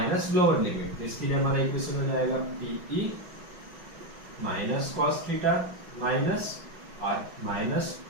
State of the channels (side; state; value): left; late; 5.4 ms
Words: lower limit. तो इसके लिए हमारा इक्वेशन हो जाएगा PE -cos थीटा माइनस, और माइनस